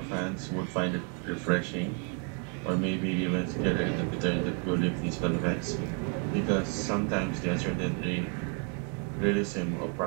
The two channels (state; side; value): quieter; left; 37.8 dB